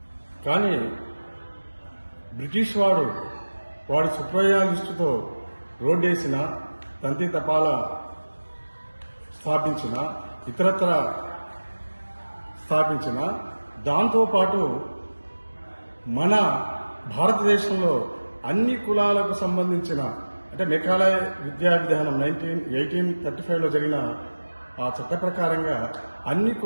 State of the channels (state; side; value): inverted; both; correlation -1.00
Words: కానీ బ్రిటిష్ వాడి స్వప్రయోజనాల దృష్టితో రోడ్డేసిన, తంతి తపాల స్థాపించిన, ఇతరత్ర స్థాపించిన, దాంతోపాటు మన భారతదేశంలో అన్ని కులాలకు సంబంధించిన, అంటే మెకాలయ విద్యా విధానం 1835లో జరిగిన ఆ చట్ట ప్రకారంగా అన్ని